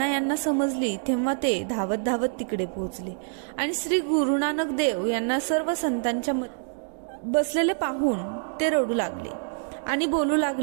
यांना समजली तेव्हा ते धावत धावत तिकडे पोहोचले आणि श्री गुरु नानक देव यांना सर्व संतांच्या बसलेले पाहून ते रडू लागले आणि बोलू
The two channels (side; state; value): left; silent; digital silence